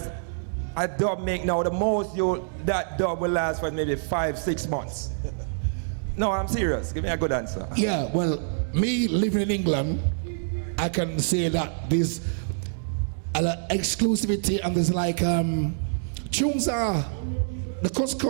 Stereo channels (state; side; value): silent; left; digital silence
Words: a dub make now, the most that dub will last for maybe 5-6 months? No, I'm serious. Give me a good answer. Yeah, well, me living in England, I can say that there's an exclusivity and there's like tunes are the